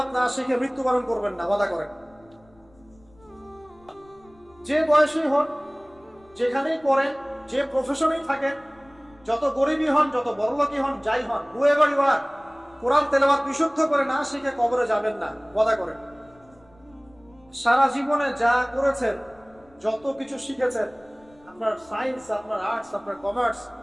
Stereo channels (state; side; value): noise; left; rumble, 29 dB below the sound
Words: না শিখে মৃত্যুবরণ করবেন না, ওয়াদা করেন। যে বয়সেই হন, যেখানেই পড়েন, যে প্রফেশনেই থাকেন, যত গরিবই হন, যত বড়লোকই হন, যাই হন, হুয়েভার ইউ আর, কোরআন তেলাওয়াত বিশুদ্ধ করে না শিখে কবরে যাবেন না, ওয়াদা করেন। সারা জীবনে যা করেছেন, যত কিছু শিখেছেন, আপনার সায়েন্স, আপনার আর্টস, আপনার commerce,